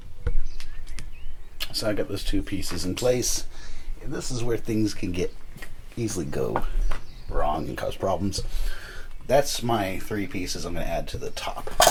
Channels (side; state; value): both; identical; correlation 1.00